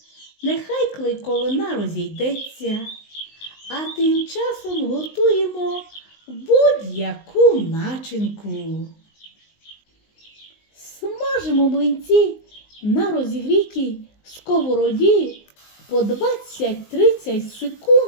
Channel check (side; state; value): right; late; 19 ms